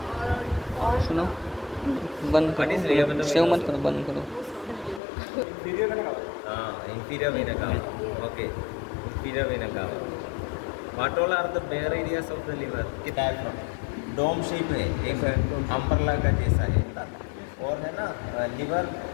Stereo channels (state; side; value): drops out; right; at 5.0 s